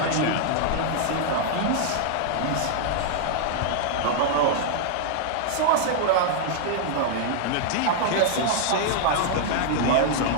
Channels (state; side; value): different; both; correlation -0.01